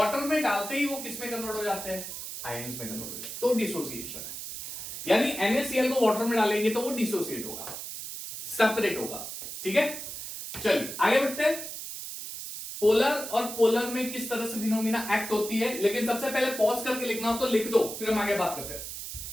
में डालते ही वो किस में कन्वर्ट हो जाते हैं, आयंस में कन्वर्ट हो जाते हैं, तो डिसोसिएशन है। यानी NaCl को वाटर में डालेंगे तो वो डिसोसिएट होगा, सेपरेट होगा, ठीक है। चलिए आगे बढ़ते हैं। पोलर और पोलर में किस तरह से फिनोमिना एक्ट होती है, लेकिन सबसे पहले पॉज करके लिखना हो तो लिख दो, फिर हम आगे बात करते हैं।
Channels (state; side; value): noise; right; hiss, 8 dB below the sound